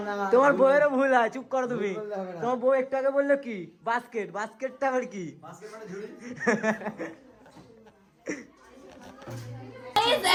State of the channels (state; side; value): identical; both; correlation 1.00